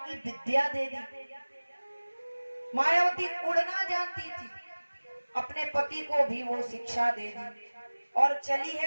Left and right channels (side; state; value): both; inverted; correlation -1.00